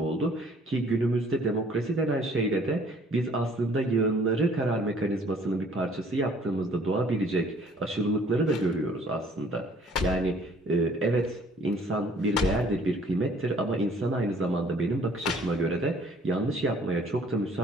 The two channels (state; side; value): normal; both; correlation 0.57